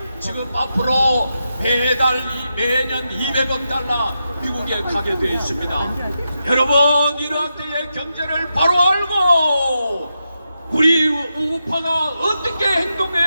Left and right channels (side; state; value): both; inverted; correlation -0.87